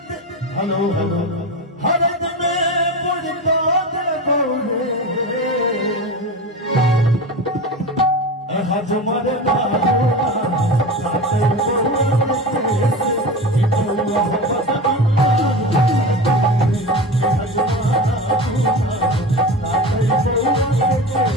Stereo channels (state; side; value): normal; both; correlation 0.27